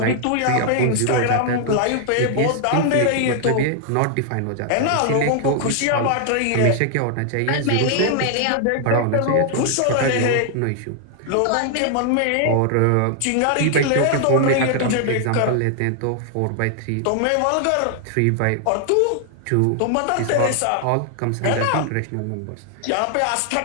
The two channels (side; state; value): both; different; correlation 0.00